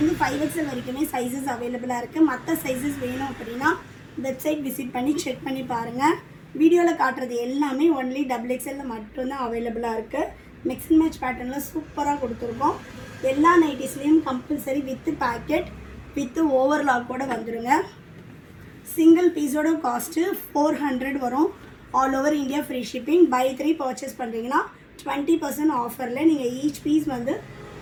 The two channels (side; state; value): both; identical; correlation 1.00